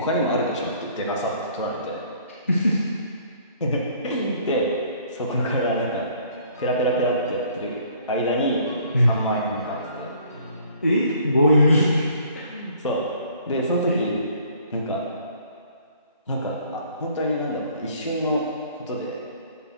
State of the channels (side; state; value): both; inverted; correlation -0.57